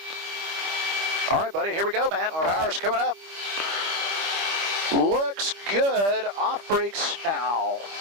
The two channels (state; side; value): late; left; 25 ms